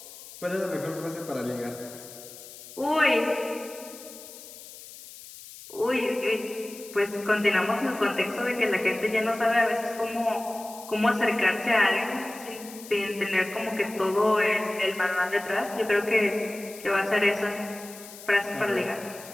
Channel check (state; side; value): noise; left; hiss, 16 dB below the sound